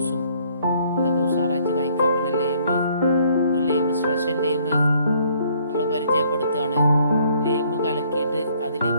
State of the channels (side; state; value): both; inverted; correlation -0.64